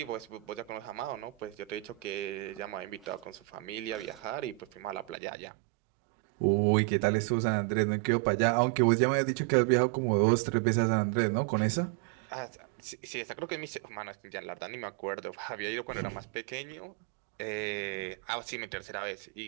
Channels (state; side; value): drops out; left; at 5.2 s